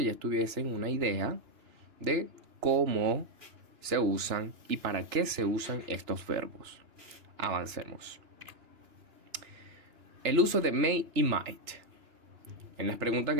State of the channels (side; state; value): left; late; 2.9 ms